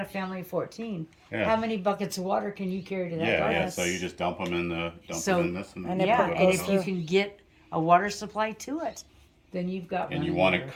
a family of 14, Yeah. how many buckets of water can you carry to that Yeah, garden? yeah. So you just dump them in the So- them in this, and, and it Yeah, put- and goes if you through. can get a water supply to it, then you've got and one you in want your- it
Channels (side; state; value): both; identical; correlation 1.00